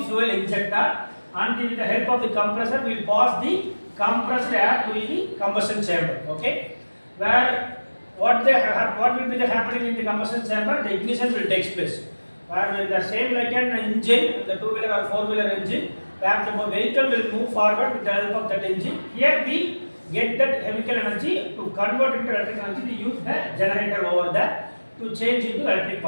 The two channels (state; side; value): inverted; both; correlation -1.00